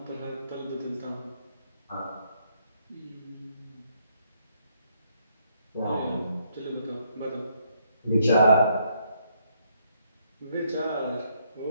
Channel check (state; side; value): inverted; both; correlation -0.72